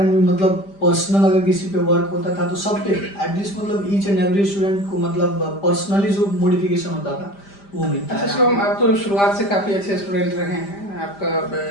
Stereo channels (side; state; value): right; late; 5.0 ms